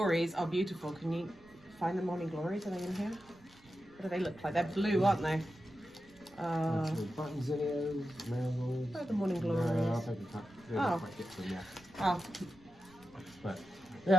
are beautiful. Can you find the morning glories? Are they in here? What do they look like? They're blue, aren't they? Some button zinnias, marigolds. Where are the morning No, I don't glories? think we Oh. quite get to them yet. Oh, But they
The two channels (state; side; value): noise; right; rumble, 27 dB below the sound